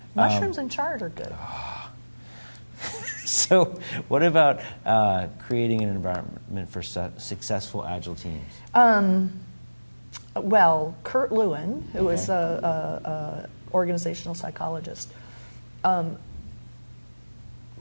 Mushrooms and chard are good. So, what about creating an environment for successful Agile teams? Well, Kurt Lewin, who is an organizational psychologist,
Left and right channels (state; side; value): inverted; both; correlation -1.00